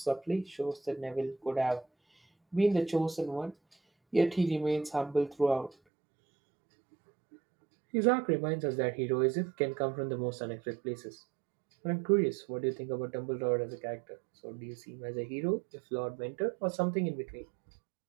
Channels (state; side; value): drops out; left; at 5.8 s